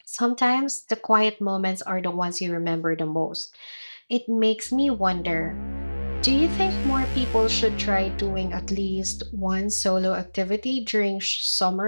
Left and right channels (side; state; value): both; inverted; correlation -1.00